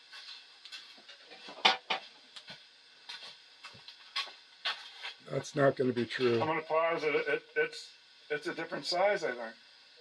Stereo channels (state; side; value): identical; both; correlation 1.00